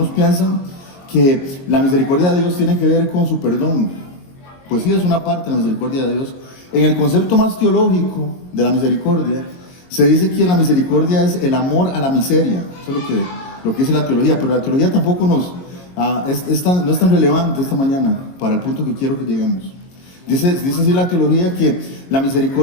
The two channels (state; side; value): late; right; 22 ms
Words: piensan, que la misericordia de Dios tiene que ver con su perdón. Pues sí, es una parte de la misericordia de Dios. En el concepto más teológico de la misericordia, se dice que la misericordia es el amor a la miseria. Eso es lo que dice la teología, pero la teología tampoco no es tan relevante esta mañana para el punto que quiero que lleguemos. Dice así la teología que la